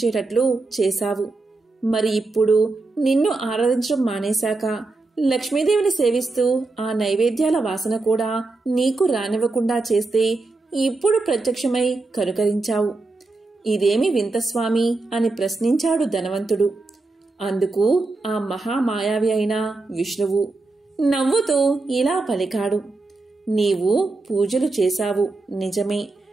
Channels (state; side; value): quieter; left; 3.4 dB